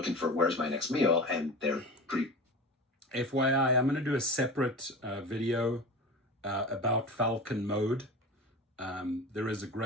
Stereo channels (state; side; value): normal; both; correlation 0.31